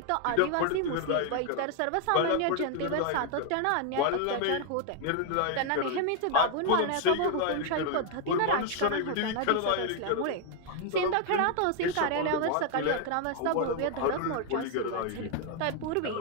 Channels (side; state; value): both; different; correlation 0.00